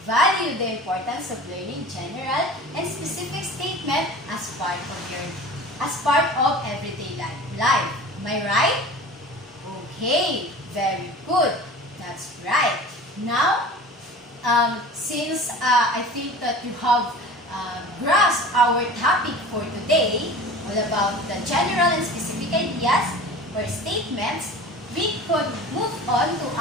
valued the importance of learning general and specific statement as part of everyday life. Am I right? Okay, very good. That's right. Now, since I think that you have grasped our topic for today, all about the general and specific ideas or statements, we could move on to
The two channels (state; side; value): normal; both; correlation 0.39